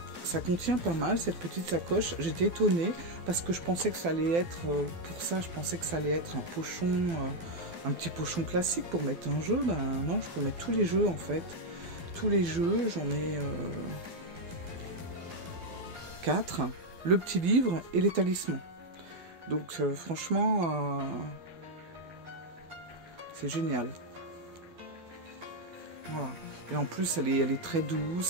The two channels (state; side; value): late; left; 12 ms